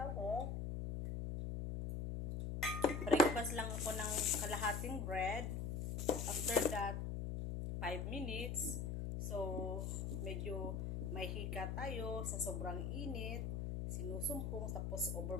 ko. Breakfast lang ako ng kalahating bread. After that, 5 minutes. So, medyo may hika tayo sa sobrang init. Sinusumpong tapos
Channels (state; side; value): noise; left; hum, 2 dB below the sound